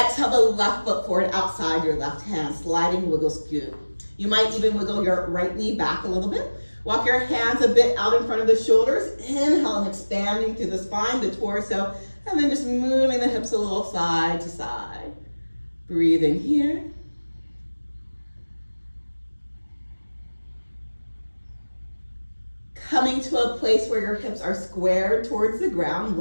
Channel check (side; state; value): both; inverted; correlation -1.00